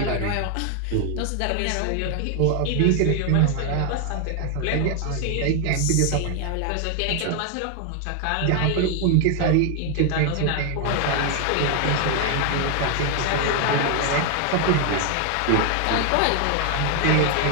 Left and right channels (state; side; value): different; both; correlation 0.00